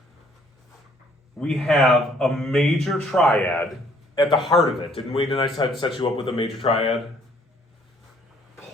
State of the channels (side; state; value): both; normal; correlation 0.63